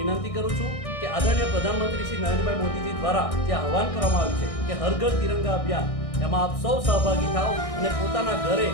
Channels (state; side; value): late; right; 1.6 ms